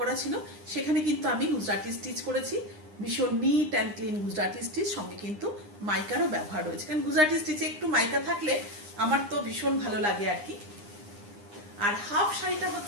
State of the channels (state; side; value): late; left; 9.8 ms